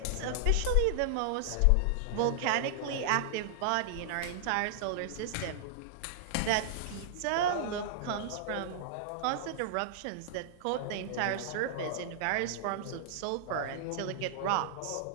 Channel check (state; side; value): different; both; correlation -0.01